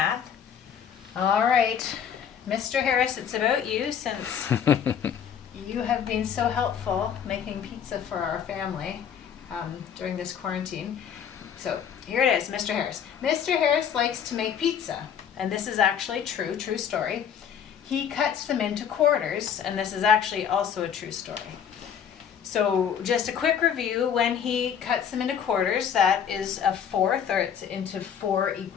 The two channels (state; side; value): quieter; right; 8.2 dB